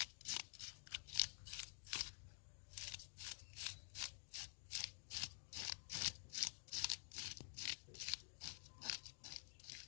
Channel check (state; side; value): silent; right; digital silence